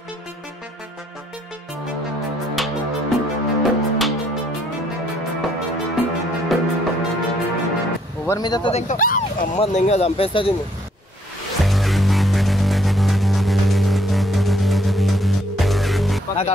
ఎవరి మీద ఇంకా అమ్మ ఇంకా చంపేస్తుంది. నాకు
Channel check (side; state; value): both; normal; correlation 0.67